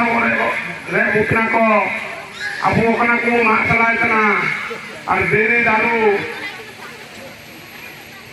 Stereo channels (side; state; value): both; identical; correlation 1.00